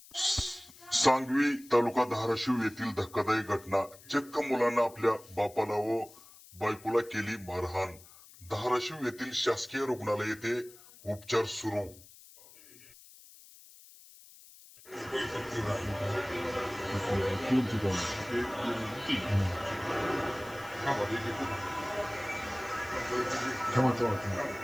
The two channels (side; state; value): left; noise; hiss, 21 dB below the sound